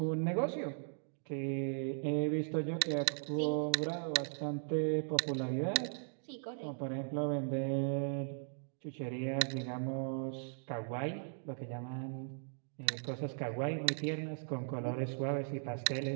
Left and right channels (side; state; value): left; silent; digital silence